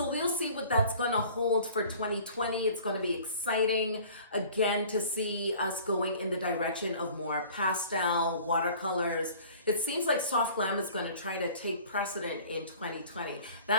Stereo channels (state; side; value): inverted; both; correlation -0.48